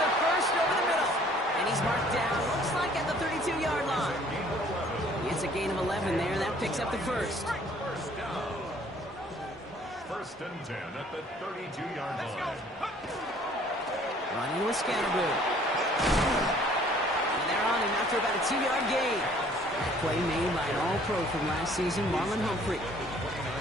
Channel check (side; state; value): both; normal; correlation 0.57